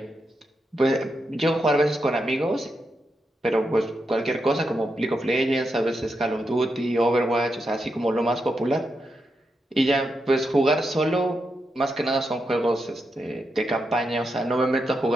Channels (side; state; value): both; normal; correlation 0.85